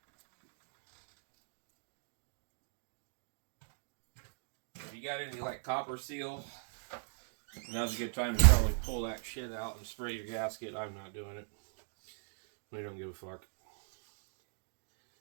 you got any like copper seal, now's a good time to probably pull that shit out and spray your gasket. I'm not doing it. We don't give a fuck.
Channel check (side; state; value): left; silent; digital silence